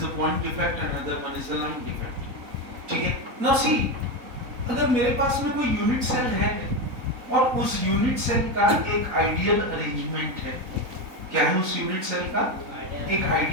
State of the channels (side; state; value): left; late; 4.0 ms